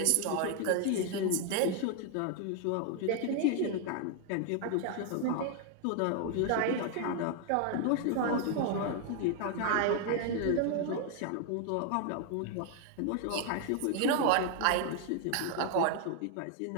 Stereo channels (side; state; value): both; different; correlation 0.00